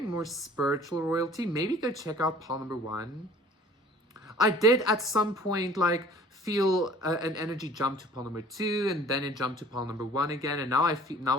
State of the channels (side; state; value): both; normal; correlation 0.49